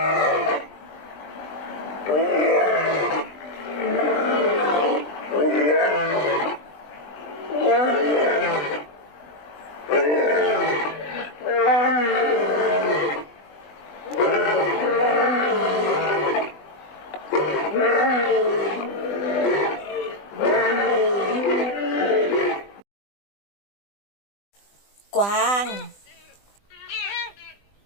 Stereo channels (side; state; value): right; late; 20 ms